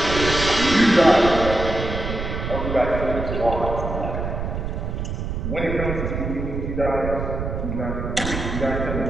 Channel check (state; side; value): noise; right; rumble, 4 dB below the sound